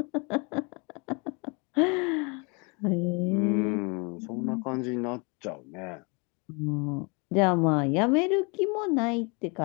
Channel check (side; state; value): right; quieter; 31.3 dB